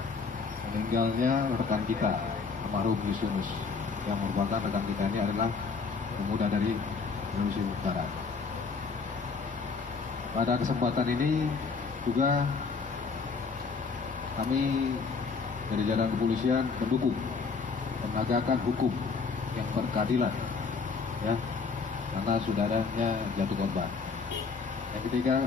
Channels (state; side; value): quieter; right; 4.9 dB